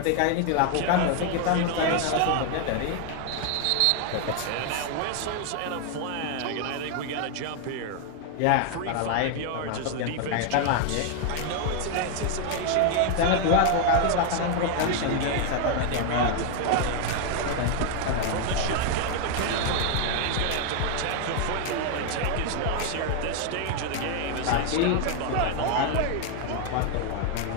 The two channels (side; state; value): both; different; correlation 0.00